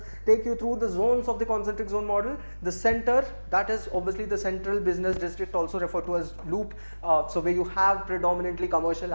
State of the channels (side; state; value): both; inverted; correlation -1.00